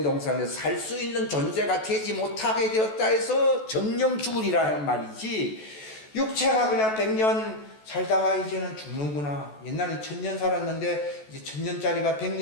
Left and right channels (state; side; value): late; right; 14 ms